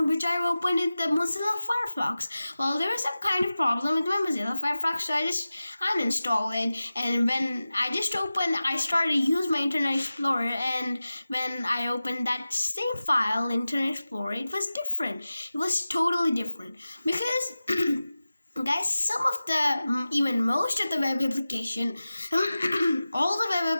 which I opened in the Mozilla Firefox. Well, there was some kind of problem with my Mozilla Firefox, so I just uninstalled it. And when I just opened, I started to use my Internet Explorer. And when I opened that same file, Internet Explorer, it was different. It was totally different because. Guys, some of the even most of the web application all the web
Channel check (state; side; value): inverted; both; correlation -0.96